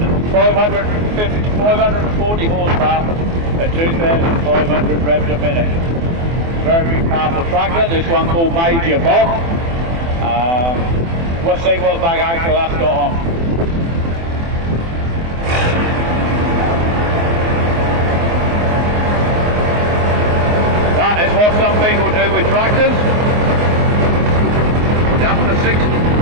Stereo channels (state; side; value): late; left; 24 ms